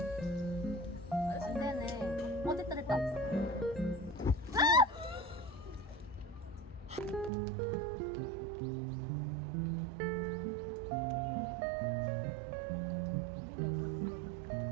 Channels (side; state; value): left; drops out; at 7.3 s